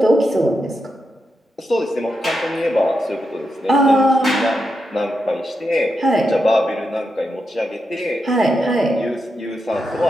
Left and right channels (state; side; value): normal; both; correlation 0.86